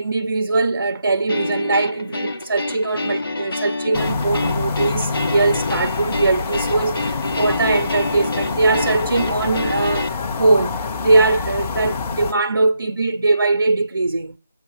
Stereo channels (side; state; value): both; inverted; correlation -0.79